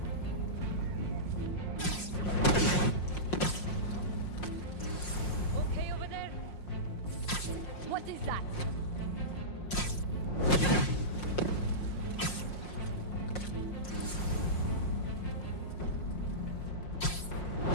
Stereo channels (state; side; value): late; right; 5.6 ms